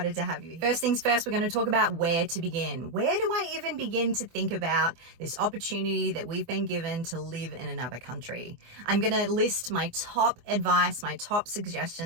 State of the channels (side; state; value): left; late; 24 ms